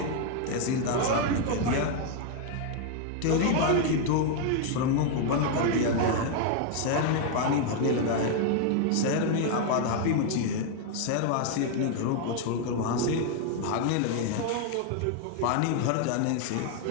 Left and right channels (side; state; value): both; different; correlation 0.00